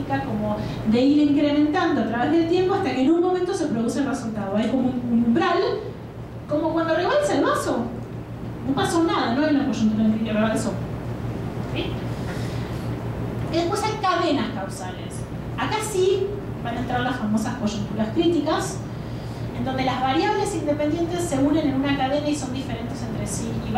como de ir incrementando a través del tiempo hasta que en un momento se produce el resultado. Hay como un umbral, como cuando rebalsa el vaso. No pasó nada, no hay una coyuntura en que rebalsó. ¿Sí? Y después hay cadenas causales. Acá sí van a entrar las famosas coyunturas críticas, en donde las variables independientes se unen en una cadena y son diferentes entre sí y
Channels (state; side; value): identical; both; correlation 1.00